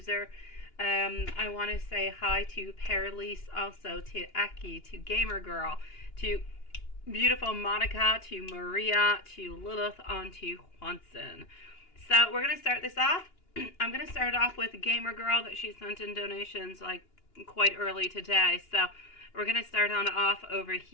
I want to say hi to Perlise, also to Eki, to Gamer Girl, to beautiful Monica, to Maria, to Lilith, on to Juanson. So we're going to start this off. I'm going to start off with Gamer Girl that she sent in donations like quite early today. So we're going to start on off over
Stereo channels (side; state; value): right; late; 2.9 ms